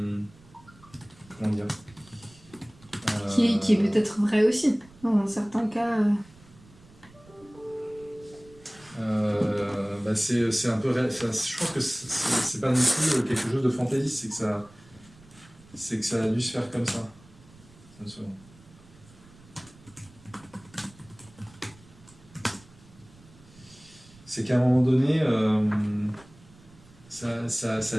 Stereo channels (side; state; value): right; noise; rumble, 25 dB below the sound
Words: comment dire, qui est peut-être vrai aussi, dans certains cas. C'est un peu je pense que c'est pas non plus quelque chose de fantaisiste, c'est que ça a dû se faire comme ça. C'est qu'à un moment donné ça a